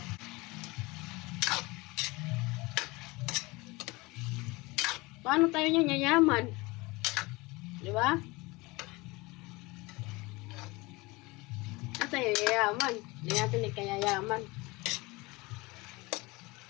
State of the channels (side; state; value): right; quieter; 23.4 dB